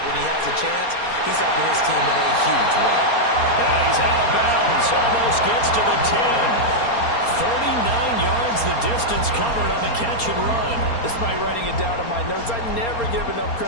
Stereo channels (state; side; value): late; right; 4.3 ms